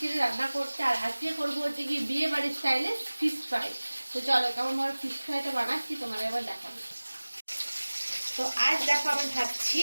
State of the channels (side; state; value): both; inverted; correlation -1.00